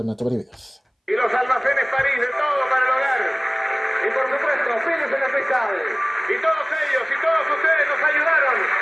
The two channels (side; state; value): both; identical; correlation 1.00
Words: en 8 videos. Y los almacenes París de todo para el hogar. Y por supuesto, Pérez en la Cristal. Y todos ellos y todos ustedes nos ayudaron.